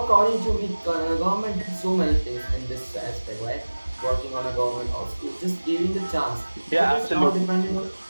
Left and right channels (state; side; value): inverted; both; correlation -1.00